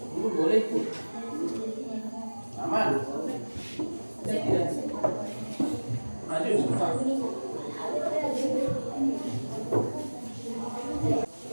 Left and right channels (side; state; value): both; inverted; correlation -1.00